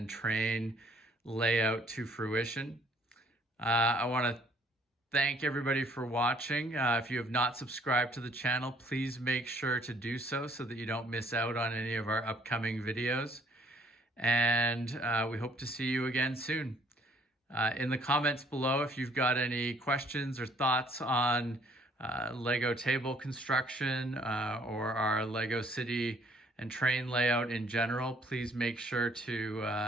train layout to fruition. I want to thank everybody for watching. If you have not subscribed to the channel, please make sure to do so that you don't miss out on any of our upcoming videos. And we hope to see you again soon. In the comments below, if you've got any questions or thoughts on Lego table construction or our Lego City and train layout in general, please make sure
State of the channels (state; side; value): normal; both; correlation 0.61